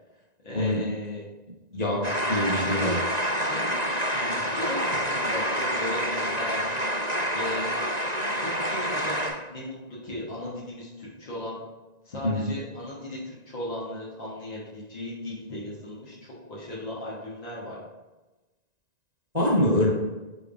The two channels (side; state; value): left; late; 1.9 ms